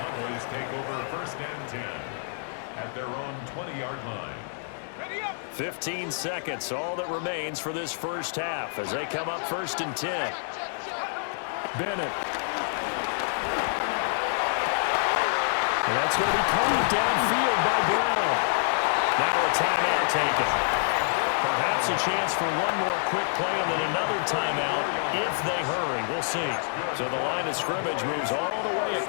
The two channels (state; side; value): silent; right; 60 dB below the other